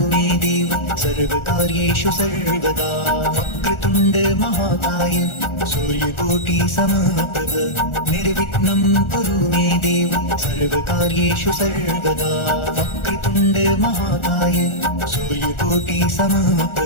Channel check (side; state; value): right; late; 1.4 ms